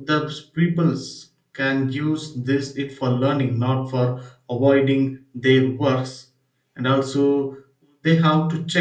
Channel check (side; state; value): both; identical; correlation 1.00